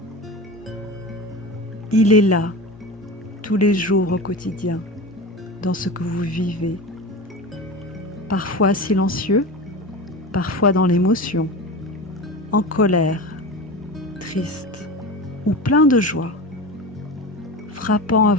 Il est là, tous les jours au quotidien, dans ce que vous vivez. Parfois silencieux, parfois dans l'émotion, en colère, triste ou plein de joie, frappant à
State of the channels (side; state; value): both; normal; correlation 0.28